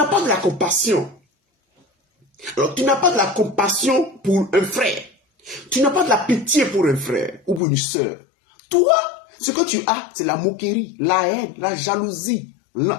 pas de la compassion. Alors, tu n'as pas de la compassion pour un frère. Tu n'as pas de la pitié pour un frère ou pour une soeur. Toi, ce que tu as, c'est la moquerie, la haine, la jalousie.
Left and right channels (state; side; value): drops out; right; at 7.6 s